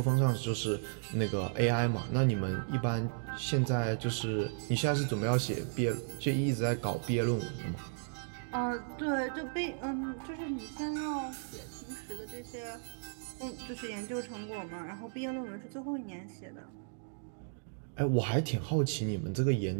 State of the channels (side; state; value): left; silent; digital silence